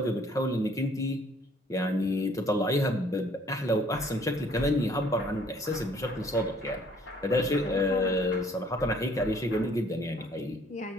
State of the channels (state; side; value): normal; both; correlation 0.59